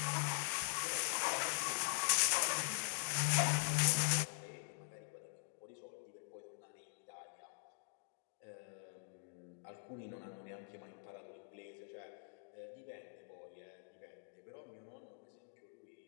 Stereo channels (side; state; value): right; silent; digital silence